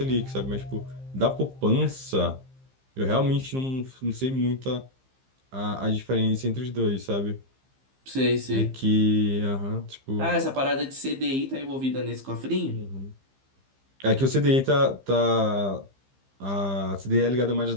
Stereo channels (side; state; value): left; late; 15 ms